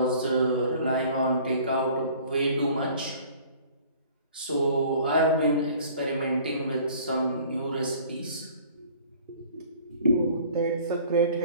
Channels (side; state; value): both; inverted; correlation -0.51